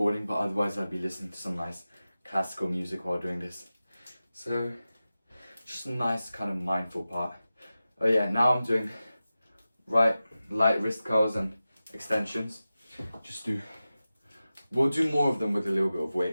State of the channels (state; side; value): inverted; both; correlation -0.95